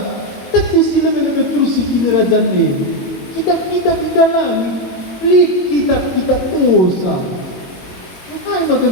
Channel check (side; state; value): right; late; 22 ms